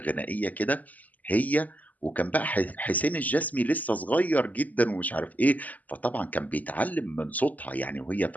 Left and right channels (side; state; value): right; late; 0.078 ms